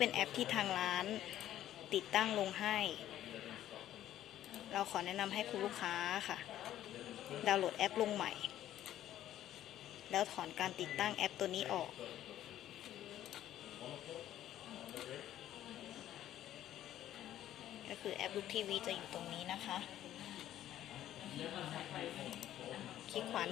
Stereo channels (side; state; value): right; quieter; 12.4 dB